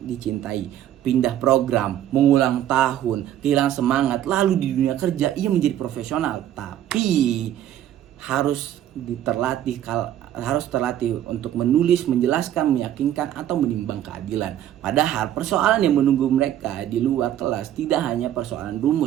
pindah program, mengulang tahun, kehilangan semangat. Lalu di dunia kerja ia menjadi profesional, tapi harus terlatih untuk menulis, menjelaskan, meyakinkan, atau menimbang keadilan. Padahal persoalan yang menunggu mereka di luar kelas tidak hanya persoalan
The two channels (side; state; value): left; quieter; 11.6 dB